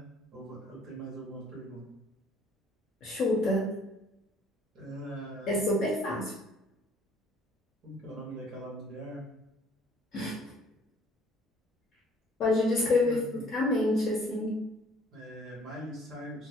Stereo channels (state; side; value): normal; both; correlation 0.58